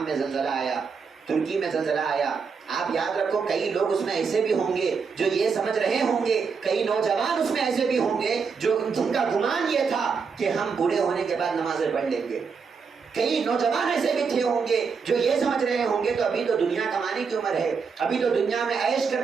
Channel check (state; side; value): quieter; left; 5.6 dB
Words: میں زلزلہ آیا، ترکی میں زلزلہ آیا، آپ یاد رکھو کئی لوگ اس میں ایسے بھی ہوں گے جو یہ سمجھ رہے ہوں گے، کئی نوجوان اس میں ایسے بھی ہوں گے جو جن کا گمان یہ تھا کہ ہم بوڑھے ہونے کے بعد نمازیں پڑھ لیں گے، کئی نوجوان ایسے بھی تھے ہوں گے جو یہ سمجھ رہے ہوں گے تو ابھی تو دنیا کمانے کی عمر ہے، ابھی تو دنیا میں عیش